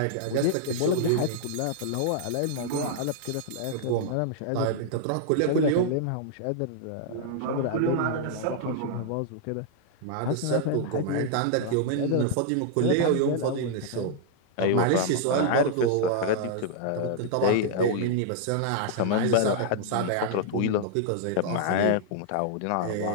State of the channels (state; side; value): different; both; correlation -0.01